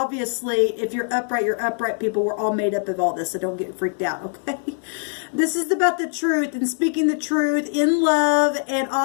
if you're upright people. We're all made up of all this, so don't get freaked out, okay? This is about the truth and speaking the truth in love, and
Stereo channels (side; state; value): right; silent; 57 dB below the other